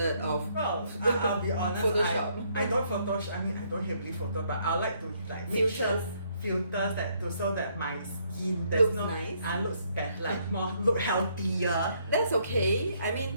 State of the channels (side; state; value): both; inverted; correlation -0.70